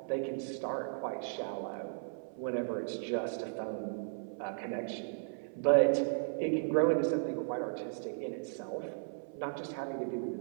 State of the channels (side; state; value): left; silent; 54 dB below the other